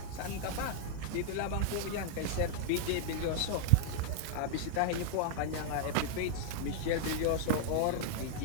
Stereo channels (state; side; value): different; both; correlation -0.01